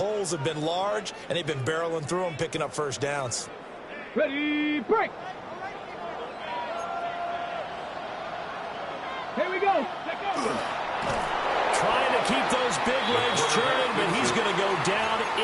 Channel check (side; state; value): both; identical; correlation 1.00